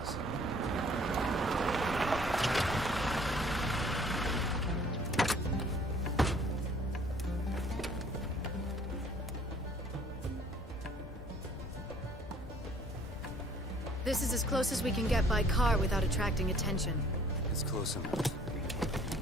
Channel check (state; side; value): normal; both; correlation 0.57